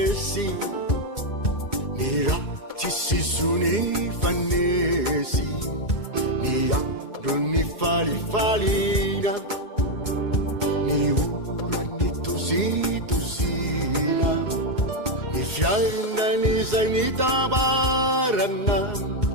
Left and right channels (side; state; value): right; late; 2.2 ms